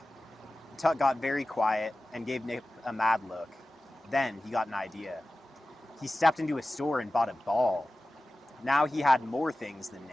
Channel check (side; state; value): both; normal; correlation 0.96